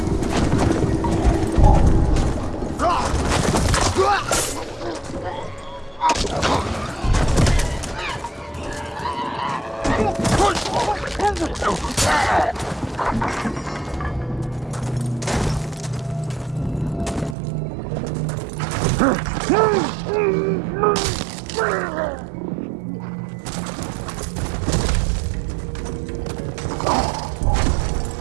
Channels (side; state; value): left; drops out; at 17.4 s